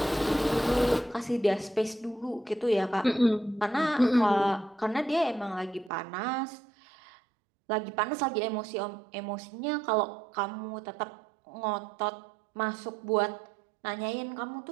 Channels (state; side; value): drops out; left; at 5.9 s